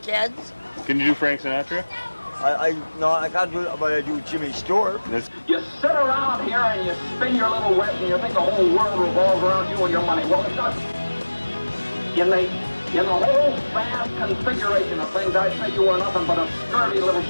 kids. Can you do Frank Sinatra? No, I can't do it, but I do Jimmy Stewart. You sit around here and you spin your little wet and you think the whole world revolves around you and your money. Well, it doesn't. In the whole vast configuration of things, I'd say you were nothing but a scurvy little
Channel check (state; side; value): inverted; both; correlation -1.00